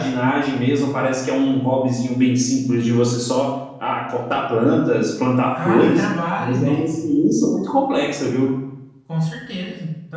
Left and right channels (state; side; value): identical; both; correlation 1.00